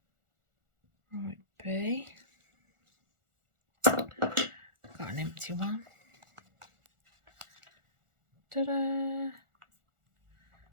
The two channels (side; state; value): left; late; 1.4 ms